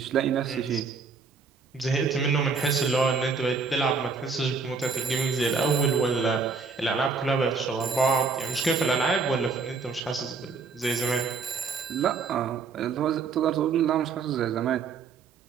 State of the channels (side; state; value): left; quieter; 4.9 dB